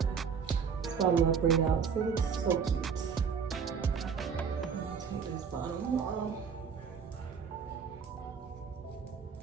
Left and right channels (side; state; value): left; quieter; 6.5 dB